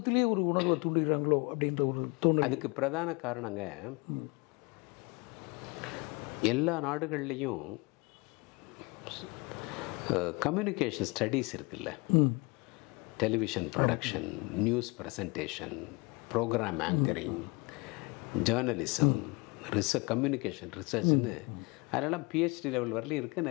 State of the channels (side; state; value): right; quieter; 27.6 dB